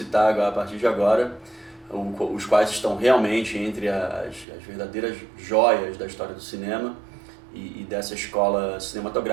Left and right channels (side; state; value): left; drops out; at 4.5 s